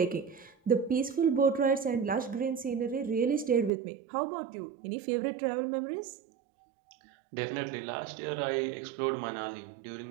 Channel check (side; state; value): left; drops out; at 3.7 s